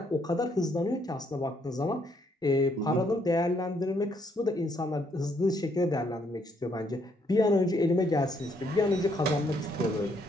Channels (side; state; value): both; normal; correlation 0.71